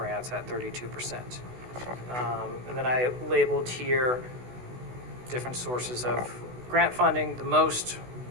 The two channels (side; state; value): left; late; 16 ms